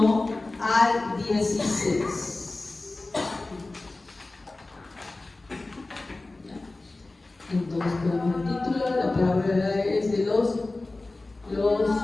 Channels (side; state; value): right; quieter; 3.1 dB